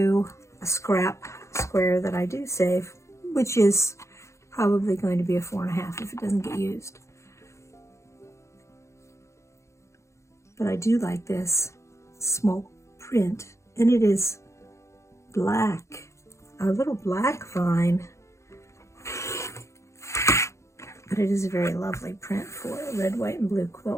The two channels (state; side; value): late; right; 0.14 ms